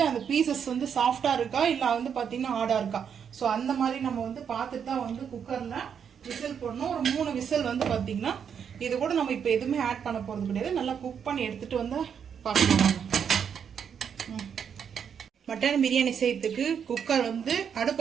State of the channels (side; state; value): left; quieter; 7.6 dB